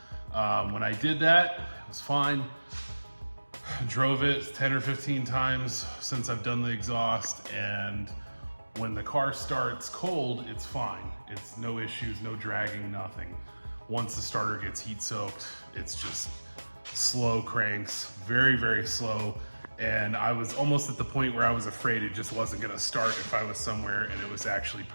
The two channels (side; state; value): both; inverted; correlation -1.00